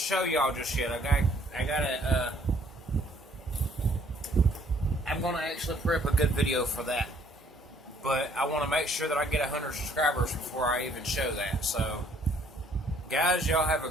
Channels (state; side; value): normal; both; correlation 0.63